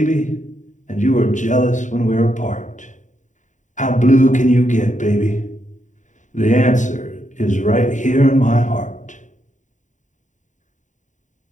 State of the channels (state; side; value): late; right; 0.36 ms